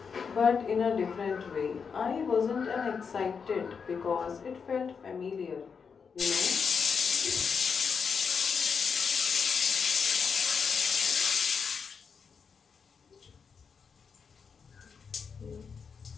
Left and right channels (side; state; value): right; quieter; 6.0 dB